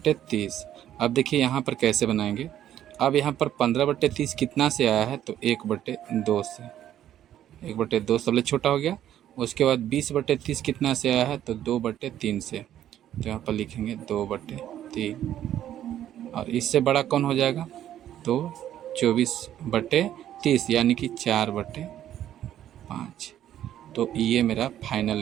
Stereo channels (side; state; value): left; quieter; 11.4 dB